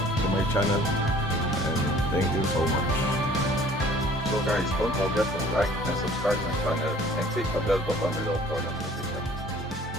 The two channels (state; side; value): normal; both; correlation 0.52